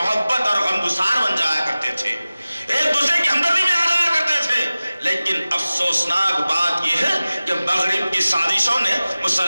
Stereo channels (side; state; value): both; inverted; correlation -0.97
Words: اور غمگسار بن جایا کرتے تھے، ایک دوسرے کی ہمدردی میں آ جایا کرتے تھے. لیکن افسوسناک بات یہ ہے کہ مغرب کی سازشوں نے